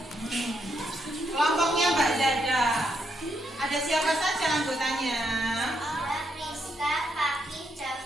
Kelompoknya Mbak Zada. Ada siapa saja anggotanya? Ada Priska, Fakih,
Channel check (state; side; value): normal; both; correlation 0.78